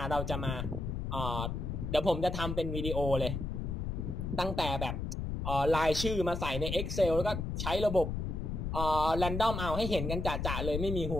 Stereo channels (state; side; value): noise; left; rumble, 3 dB below the sound